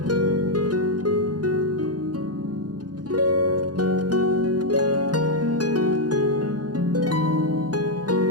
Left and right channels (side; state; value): left; late; 0.69 ms